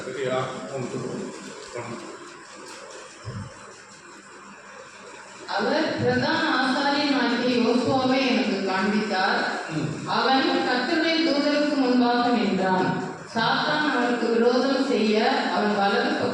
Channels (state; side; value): identical; both; correlation 1.00